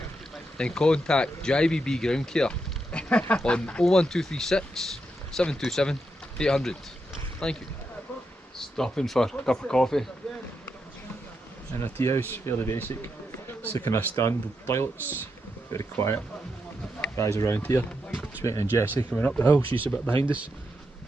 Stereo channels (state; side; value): normal; both; correlation 0.83